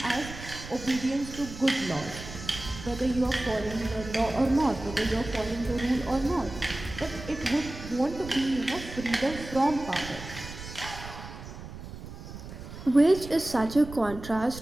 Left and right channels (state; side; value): noise; right; rumble, 12 dB below the sound